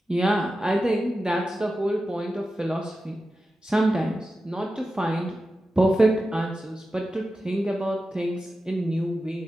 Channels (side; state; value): both; normal; correlation 0.92